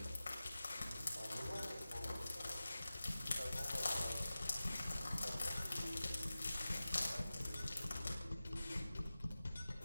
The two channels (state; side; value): inverted; both; correlation -0.96